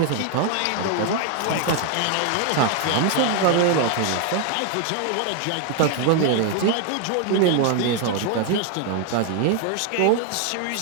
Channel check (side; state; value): both; different; correlation 0.01